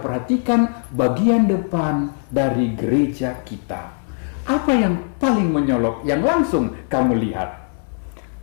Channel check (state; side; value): silent; right; 65 dB below the other